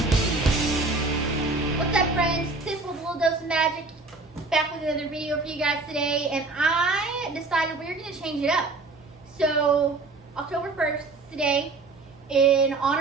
What's up, friends? This was a little dose of magic. Back with another video for you guys today, and I decided we were going to change it up. So, October 1st today, in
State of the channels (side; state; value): left; quieter; 3.5 dB